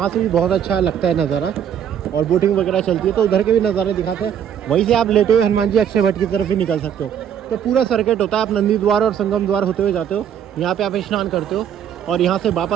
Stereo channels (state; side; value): quieter; left; 9.0 dB